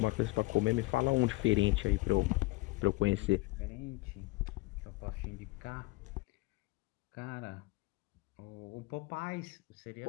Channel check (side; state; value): right; quieter; 23.2 dB